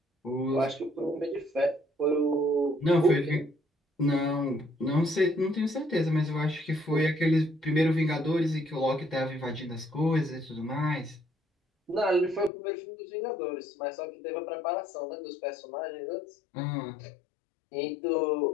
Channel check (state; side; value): drops out; right; at 12.5 s